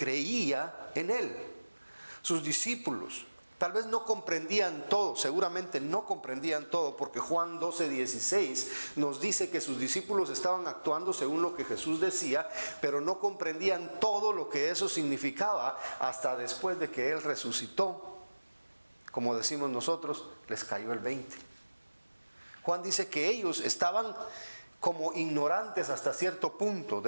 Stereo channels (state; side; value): inverted; both; correlation -1.00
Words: en él, sus discípulos. Tal vez no comprendían todo, seguramente no comprendían todo, porque Juan 12:16 nos dice que sus discípulos estaban actuando según lo que Jesús decía, pero no comprendían todo lo que eso significaba hasta después de que Él resucitó. Como decimos nosotros, les cayó el 20. Juan dice que ellos estaban como ignorantes hasta cierto punto